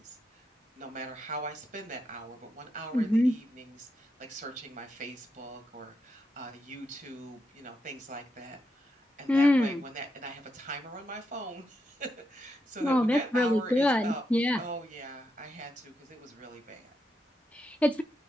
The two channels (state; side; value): normal; both; correlation 0.83